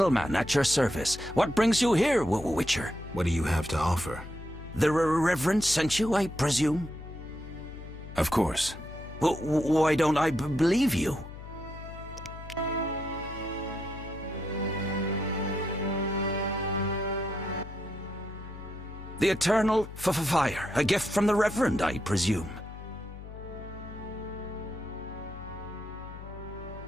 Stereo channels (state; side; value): noise; left; hum, 13 dB below the sound